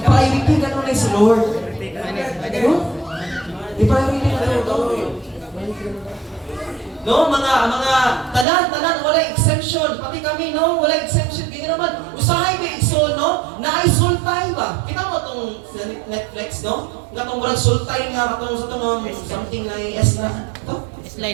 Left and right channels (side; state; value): left; drops out; at 8.5 s